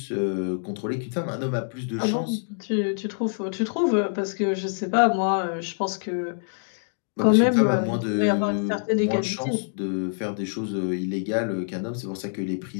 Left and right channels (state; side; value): silent; right; digital silence